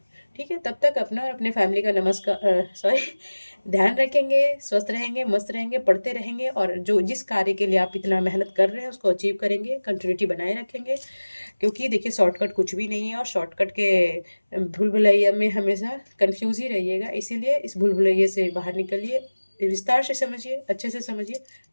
ठीक है? तब तक अपना और अपने फैमिली का सॉरी ध्यान रखेंगे, स्वस्थ रहेंगे, मस्त रहेंगे, पढ़ते रहेंगे और जो जिस कार्य के लिए आप इतना मेहनत कर रहे हैं उसको अचीव करेंगे, कंटिन्यूटी बनाए रखेंगे। क्योंकि देखिए शॉर्टकट कुछ भी नहीं है और शॉर्टकट के भूल-भुलैया में हमेशा कन्फ्यूज़ ही रहिएगा। इसीलिए इस भूल-भुलैया से बाहर निकलिए, विस्तार से समझिए, अच्छे से समझिए।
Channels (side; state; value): both; inverted; correlation -1.00